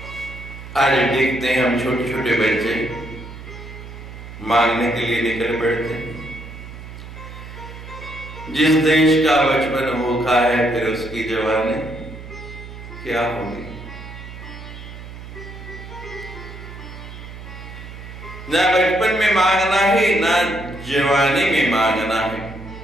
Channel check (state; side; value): noise; right; hum, 13 dB below the sound